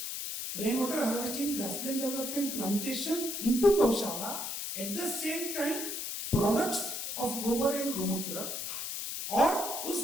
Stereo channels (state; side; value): noise; left; hiss, 4 dB below the sound